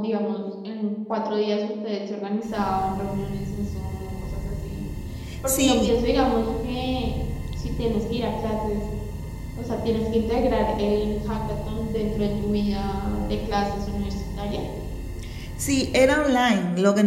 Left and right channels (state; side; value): identical; both; correlation 1.00